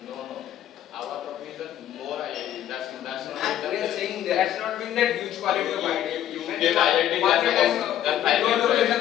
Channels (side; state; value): right; quieter; 11.5 dB